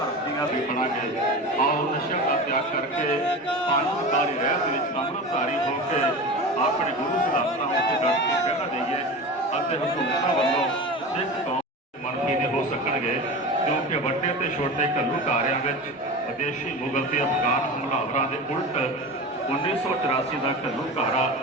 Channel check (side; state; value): both; normal; correlation 0.29